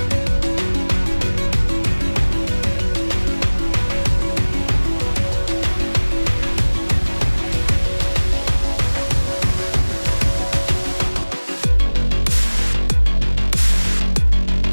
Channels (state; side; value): inverted; both; correlation -1.00